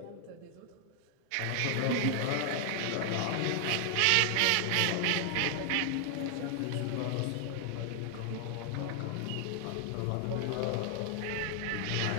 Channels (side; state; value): both; different; correlation 0.00